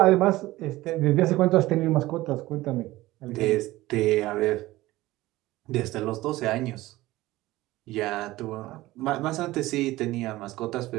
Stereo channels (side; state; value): left; quieter; 17.8 dB